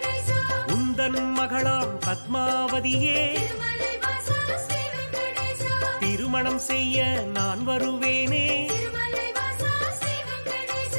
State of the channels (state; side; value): inverted; both; correlation -1.00